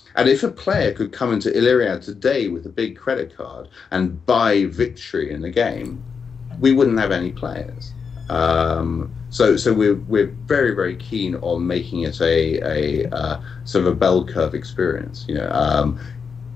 And if a player could come into Illyriad today with a big credit card and buy victory in the game, we wouldn't have any players. So we're very, very keen on making it a sort of a bell curve experience. You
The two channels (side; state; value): right; quieter; 5.9 dB